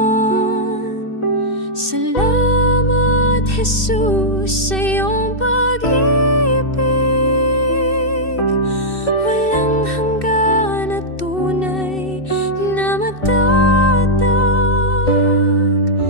Salamat Jesus sa iyong pag-ibig, walang hanggan at tunay na matatag.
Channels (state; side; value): late; right; 2.6 ms